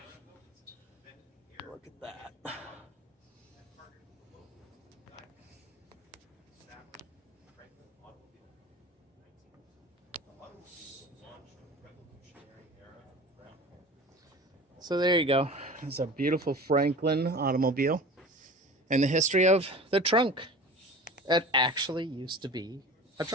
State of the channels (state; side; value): normal; both; correlation 0.37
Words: Look at that. So there you go. It's a beautiful Franklin automobile and the history of the trunk. It actually used to be a